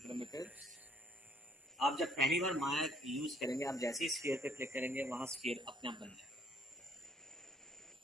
आप जब पहली बार माया यूज करेंगे, आप जैसे ही स्फीयर पे क्लिक करेंगे, वहाँ स्फीयर अपने आप बन जाएगा,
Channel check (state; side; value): normal; both; correlation 0.63